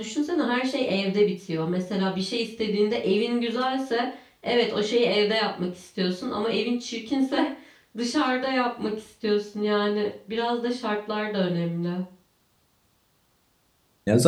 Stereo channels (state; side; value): identical; both; correlation 1.00